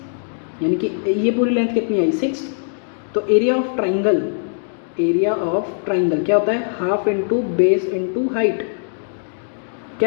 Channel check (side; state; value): right; silent; digital silence